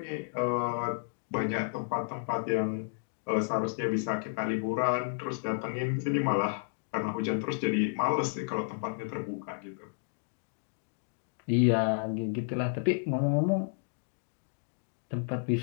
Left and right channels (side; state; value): right; silent; digital silence